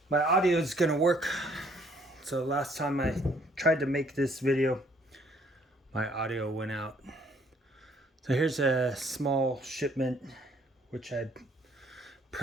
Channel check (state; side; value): normal; both; correlation 0.63